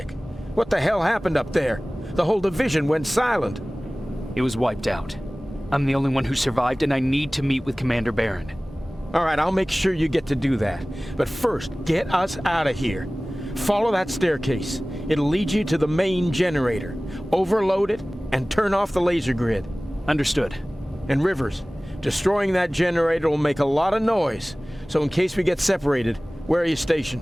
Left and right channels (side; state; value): both; normal; correlation 0.98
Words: What the hell happened up there? The whole division went silent. It was wiped out. I'm the only one who survived, and I need to meet with Commander Barron. All right, I'll make sure you get to do that. But first, get us out of here. Follow that staircase. It'll lead you to the main generator. Overload it and turn off the laser grid. Understood. And Rivers, destroying that generator will make a lot of noise. So in case we get separated, where are you